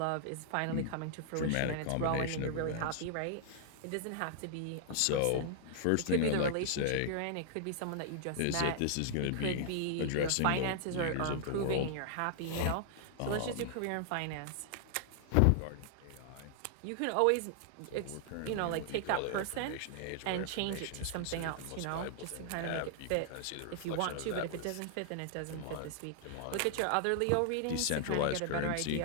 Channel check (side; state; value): both; different; correlation -0.01